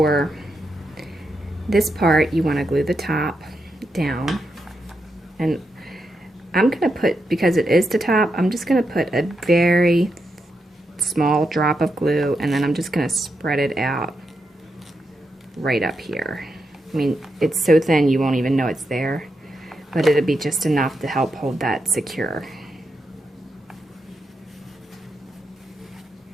this part, you want to glue the top down. And I'm going to put, because it is the top, I'm just going to put a very small drop of glue, and then I'm just going to spread it out right up here. I mean, it's so thin you won't even know it's there, but it'll be just enough to help hold that secure.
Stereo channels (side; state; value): both; normal; correlation 0.85